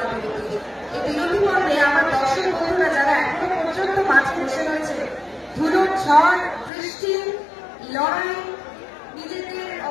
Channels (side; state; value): right; drops out; at 6.7 s